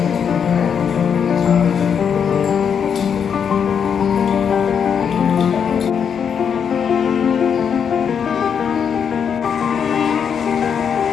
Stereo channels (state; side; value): quieter; right; 7.3 dB